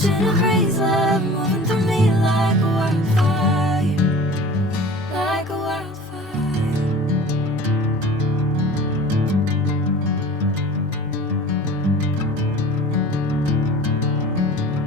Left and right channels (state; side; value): normal; both; correlation 0.42